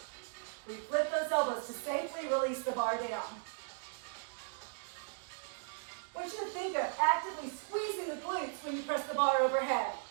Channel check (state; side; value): silent; left; digital silence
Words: We flip those elbows to safely release the bar down. I want you to think of actively squeezing the glutes when you press the bar overhead.